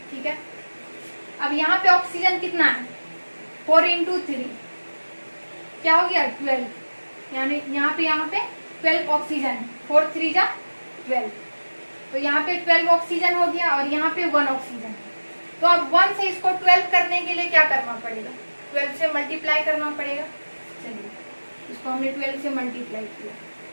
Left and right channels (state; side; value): inverted; both; correlation -1.00